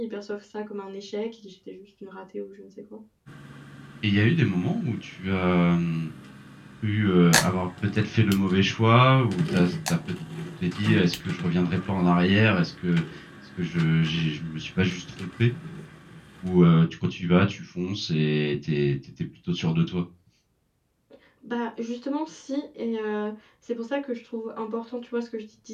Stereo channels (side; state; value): both; identical; correlation 1.00